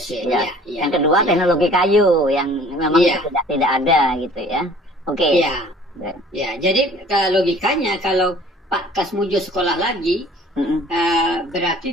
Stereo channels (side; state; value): both; normal; correlation 0.50